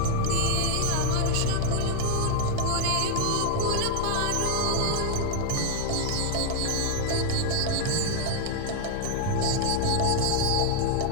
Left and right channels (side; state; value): both; different; correlation 0.00